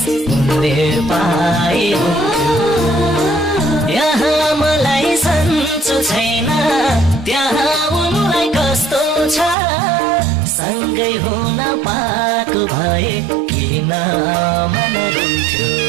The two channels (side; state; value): left; drops out; at 9.6 s